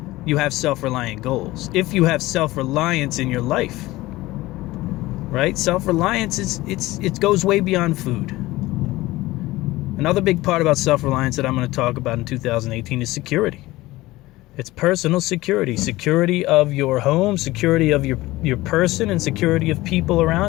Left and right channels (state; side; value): quieter; right; 18.5 dB